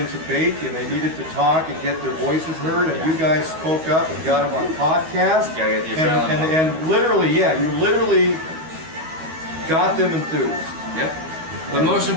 to bake, and they needed to talk and get their voices heard. And you guys spoke up and got them on podcast. And literally, you literally got them enthused. Yep. But most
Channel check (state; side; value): late; left; 13 ms